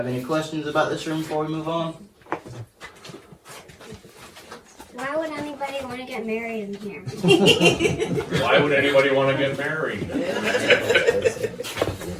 any questions about this room before we move on? Why would anybody want to get married in here? Why would anybody want to get married?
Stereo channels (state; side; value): identical; both; correlation 1.00